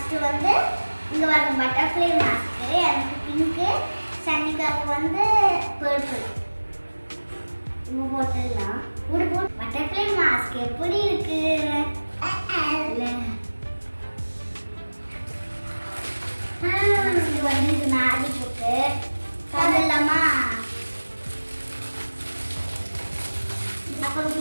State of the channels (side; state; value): both; inverted; correlation -1.00